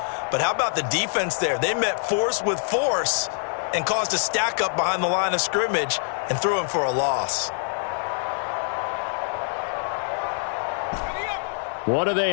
But how about the defense there? They met force with force and caused a stack up behind the line of scrimmage and threw him for a loss. What do they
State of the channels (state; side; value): silent; right; digital silence